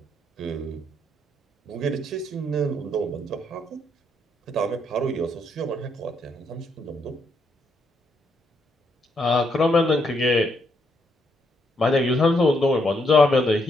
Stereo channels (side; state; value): both; normal; correlation 0.76